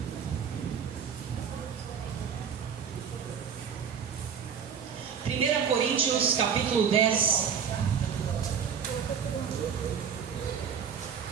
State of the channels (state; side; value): quieter; left; 7.2 dB